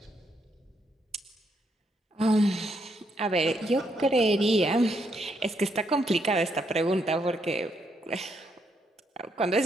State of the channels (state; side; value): normal; both; correlation 0.76